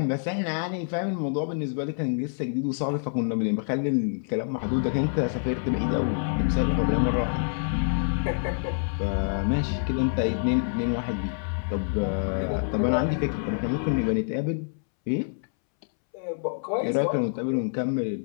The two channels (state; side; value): silent; right; 60 dB below the other